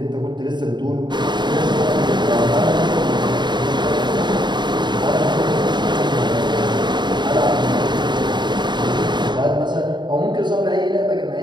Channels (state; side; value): late; left; 0.22 ms